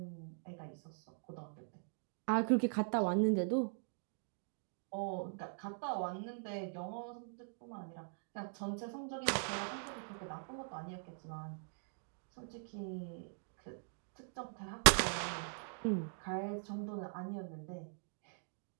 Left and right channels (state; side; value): silent; left; digital silence